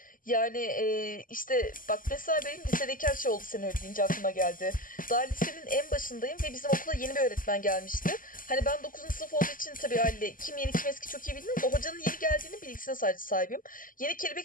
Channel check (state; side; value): late; right; 0.40 ms